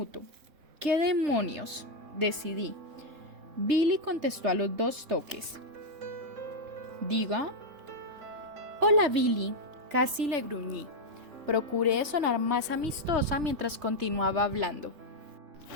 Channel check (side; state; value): left; late; 3.3 ms